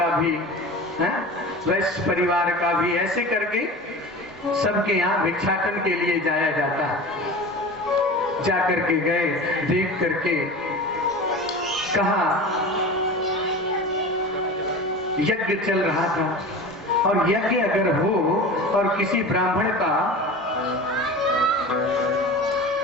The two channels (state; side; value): normal; both; correlation 0.33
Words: भी, वैश्य परिवार का भी, ऐसे करके सबके यहाँ भिक्षाटन के लिए जाया जाता है। जाकर के गए, देख करके कहा यज्ञ चल रहा था, और यज्ञ अगर हो और किसी ब्राह्मण का